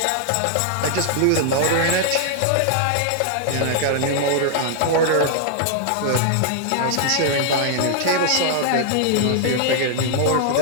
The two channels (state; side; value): different; both; correlation 0.00